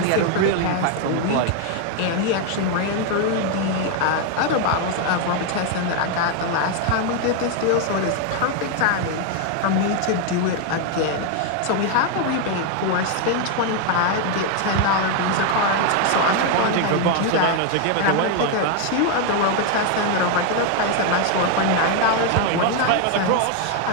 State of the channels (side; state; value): both; different; correlation 0.01